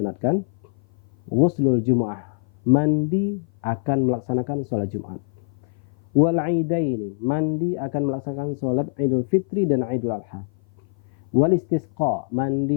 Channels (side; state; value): right; silent; 56 dB below the other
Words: Ghuslul Jumu'ah, mandi akan melaksanakan sholat Jumat. Wal Aidaini, mandi akan melaksanakan sholat Idul Fitri dan Idul Adha. Wal Istisqa,